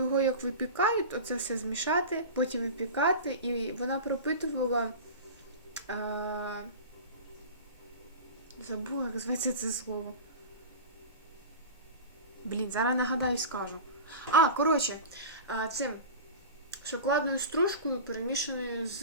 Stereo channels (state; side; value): inverted; both; correlation -0.31